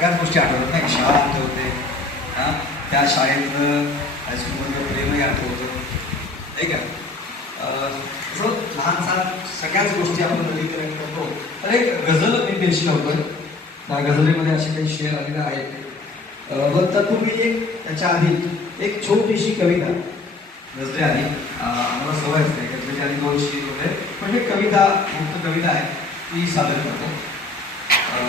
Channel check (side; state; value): right; quieter; 3.4 dB